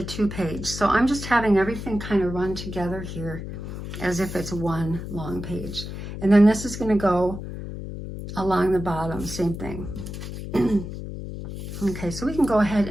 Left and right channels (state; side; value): noise; left; hum, 8 dB below the sound